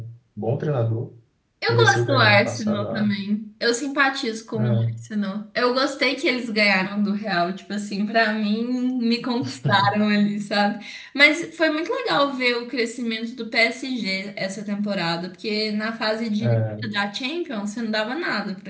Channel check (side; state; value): both; identical; correlation 1.00